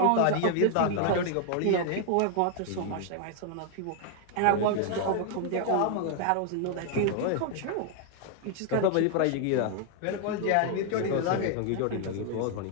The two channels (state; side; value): different; both; correlation 0.00